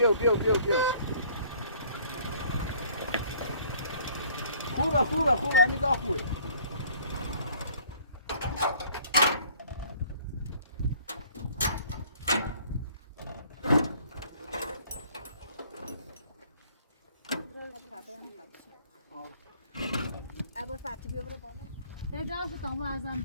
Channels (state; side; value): inverted; both; correlation -0.56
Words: خوبه همین دا خوبه ابو فاتی بیا برو بالا. اجازه تام ارزم